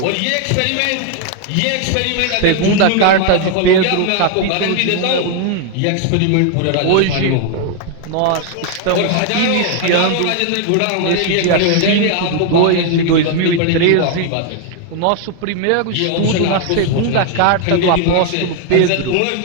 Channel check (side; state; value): both; different; correlation 0.00